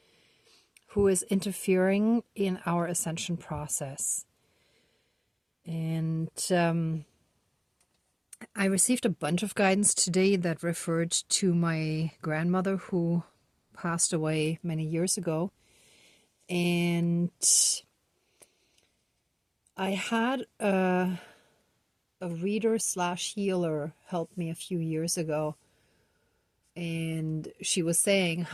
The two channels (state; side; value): identical; both; correlation 1.00